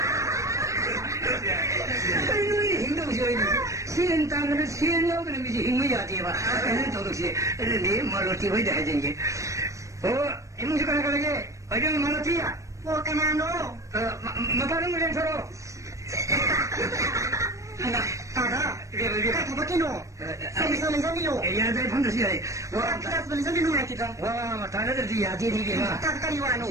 눈이 힘들어서 시엔 땅을 시엔 여기는 미지 힘이야 돼봐 애는 도둑시 애는 네 말로 뛰어야 돼 하지 이문식 하나 가게 어디는 말로 뛰어 뭐 까나노 마파는 물량 서로 Tada, kita bakino. Sambil sambil. Ya, dari pun sih. Wah, kita sambil nunggu kita. Wah, matanya dari dia jadi dia. Tak kali wano.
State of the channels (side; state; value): left; late; 0.15 ms